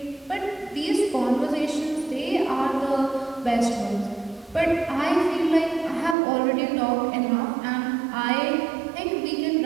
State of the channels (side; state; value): left; drops out; at 6.2 s